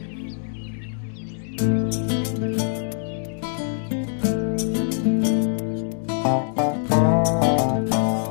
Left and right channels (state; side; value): silent; right; 63 dB below the other